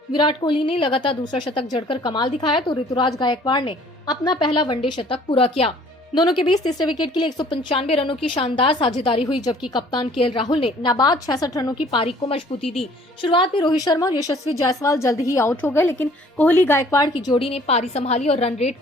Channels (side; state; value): both; normal; correlation 0.55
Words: विराट कोहली ने लगातार दूसरा शतक जड़कर कमाल दिखाया, तो ऋतुराज गायकवाड़ ने अपना पहला वनडे शतक पूरा किया। दोनों के बीच तीसरे विकेट के लिए 195 रनों की शानदार साझेदारी हुई, जबकि कप्तान केएल राहुल ने नाबाद 66 रनों की पारी को मजबूती दी। शुरुआत में रोहित शर्मा और यशस्वी जायसवाल जल्द ही आउट हो गए, लेकिन कोहली गायकवाड़ की जोड़ी ने पारी संभाली और रन रेट